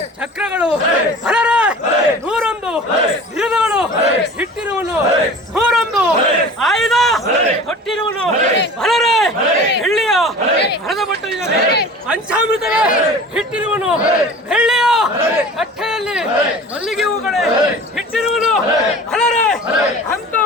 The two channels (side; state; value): both; normal; correlation 0.40